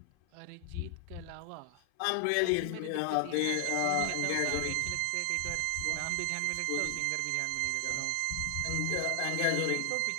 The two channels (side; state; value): both; different; correlation 0.00